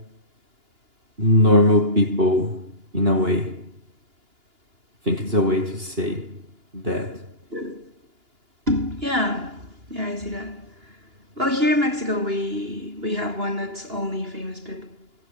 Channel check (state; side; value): late; left; 2.9 ms